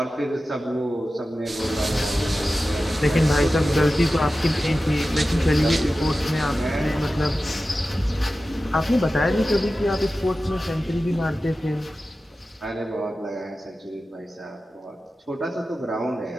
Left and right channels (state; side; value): normal; both; correlation 0.94